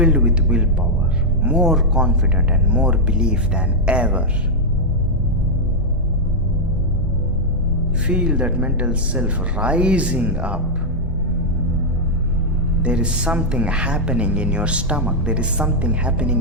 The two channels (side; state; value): both; normal; correlation -0.02